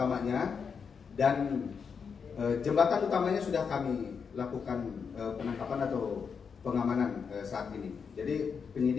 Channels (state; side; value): quieter; right; 6.1 dB